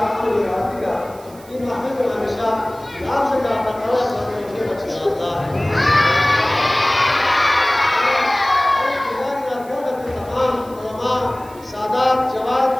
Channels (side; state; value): right; noise; hiss, 23 dB below the sound